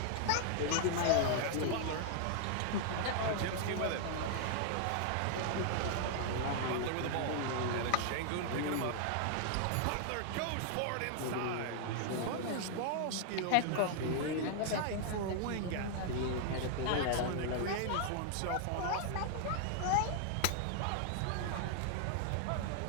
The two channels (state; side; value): different; both; correlation 0.00